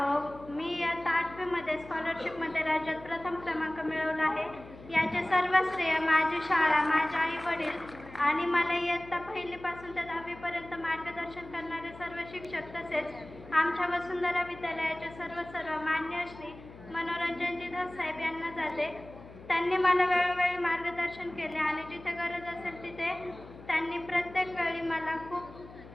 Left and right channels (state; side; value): noise; left; hum, 18 dB below the sound